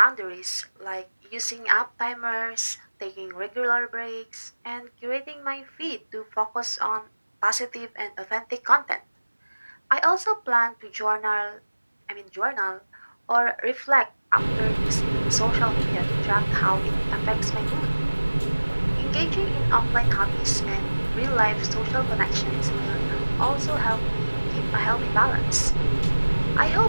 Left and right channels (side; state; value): both; inverted; correlation -1.00